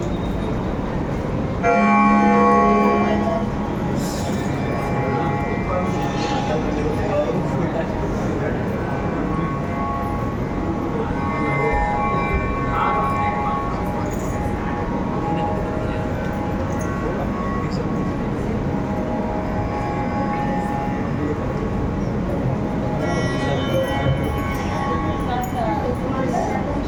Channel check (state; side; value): identical; both; correlation 1.00